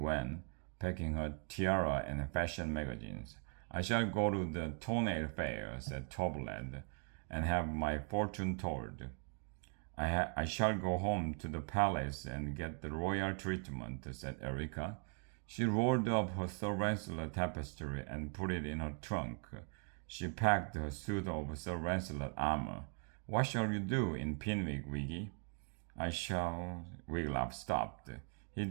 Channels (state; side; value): quieter; left; 37.9 dB